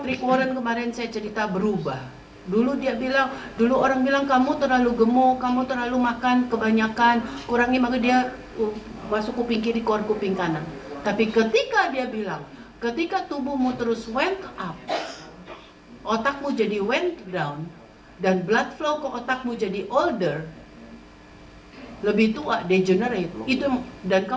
Rick Warren kemarin saya cerita berubah. Dulu orang bilang kamu terlalu gemuk, kamu terlalu makan kebanyakan, kurangi, maka dia masuk kuping kiri, keluar kuping kanan. Tapi ketika dia bilang, ketika tubuhmu terus went up, otakmu jadi went down, dan blood flow ke otakmu jadi older, lebih tua, degenerate, itu, dan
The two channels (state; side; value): identical; both; correlation 1.00